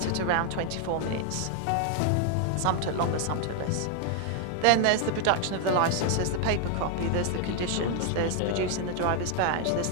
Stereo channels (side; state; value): both; different; correlation 0.00